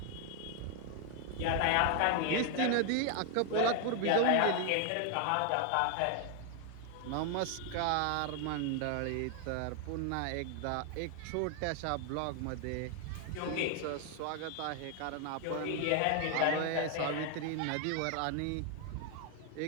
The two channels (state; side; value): different; both; correlation 0.00